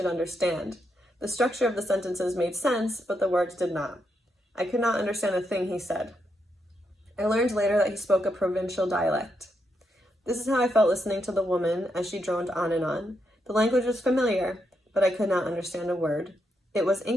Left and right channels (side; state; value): both; normal; correlation 0.81